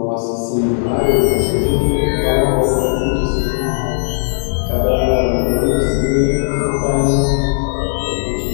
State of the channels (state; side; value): silent; right; 69 dB below the other